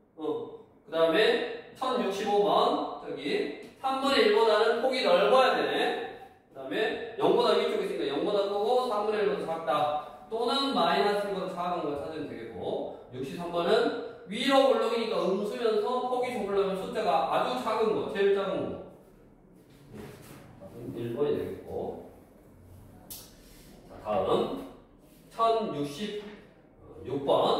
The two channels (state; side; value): identical; both; correlation 1.00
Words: 그 다음에 1065번 저기 3분의 1보다는 폭이 넓어야 되네. 그 다음에 0보다 위쪽에 있으니까 0보다 크고 3분의 1보다 작다. 또는 마이너스 1보다 작은 걸 찾으면 되겠고 63번은 위로 올라오니까 음수면서 폭이 좁으려면 숫자가 아주 작은 거, 제일 작은 거 1번이 되겠고 자, 다음